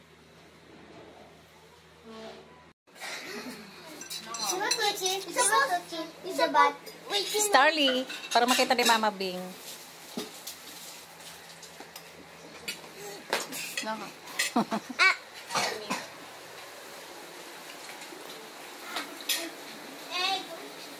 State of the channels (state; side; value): identical; both; correlation 1.00